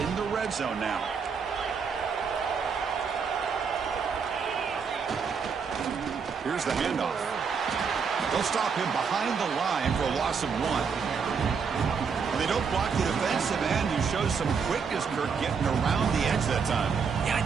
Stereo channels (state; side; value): quieter; left; 5.9 dB